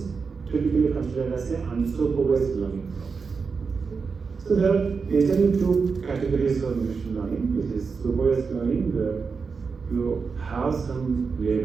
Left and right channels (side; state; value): left; quieter; 5.1 dB